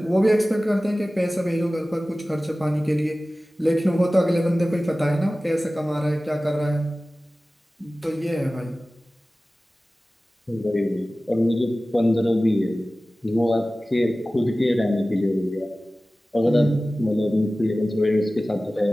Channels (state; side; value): normal; both; correlation 0.97